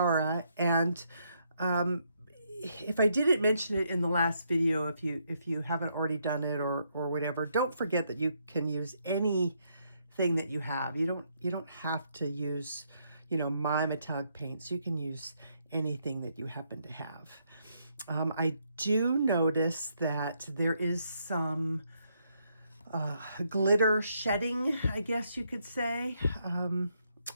And if I didn't mention it in the last video, if you haven't already done it or whatever, don't forget that you can use any thing that you have. You don't have to use, my metallic paints. You can use anything that you happen to have. I do notice that there is some glitter shedding, I guess you could say.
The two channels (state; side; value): inverted; both; correlation -0.75